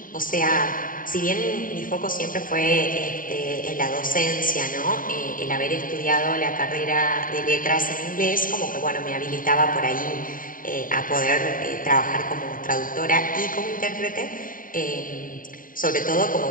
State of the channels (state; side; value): late; right; 0.40 ms